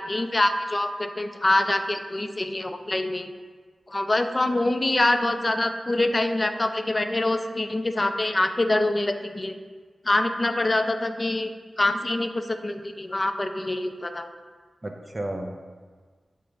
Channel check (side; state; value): both; normal; correlation 0.98